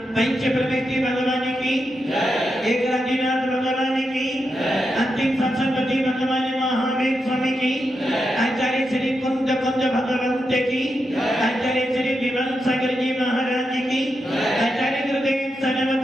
पंच प्रवृत्ति भगवान की एक राजीनाथ भगवान की अंतिम संसदपति भगवान महावीर स्वामी की आचार्य श्री कुंद भगवंत की आचार्य श्री विमल सागर जी महाराज की आचार्य गुरुदेव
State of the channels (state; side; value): normal; both; correlation 0.86